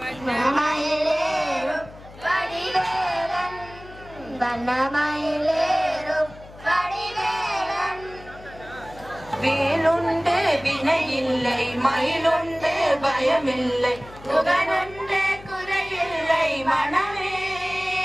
கடிவேலன் வண்ணமயிலேறும் கடிவேலன் வேலுண்டு வினையில்லை மயிலுண்டு பயமில்லை புகனுண்டு குறையில்லை மனமே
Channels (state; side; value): noise; left; hum, 19 dB below the sound